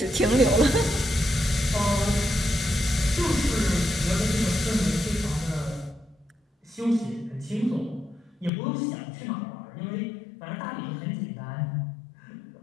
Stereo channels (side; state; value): right; drops out; at 8.5 s